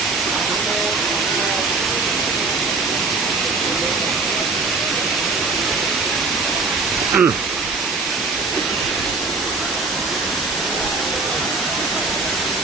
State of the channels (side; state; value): left; quieter; 4.0 dB